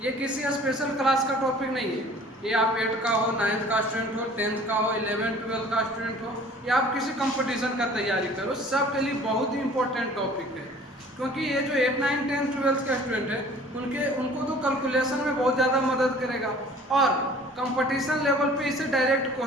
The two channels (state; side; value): normal; both; correlation 0.50